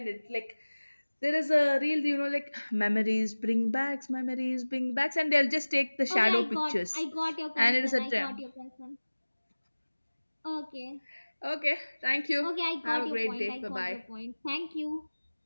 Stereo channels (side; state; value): both; inverted; correlation -1.00